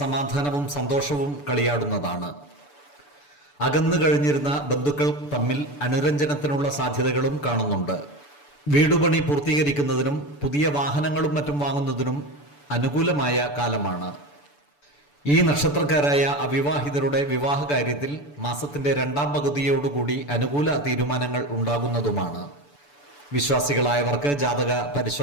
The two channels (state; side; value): late; right; 6.9 ms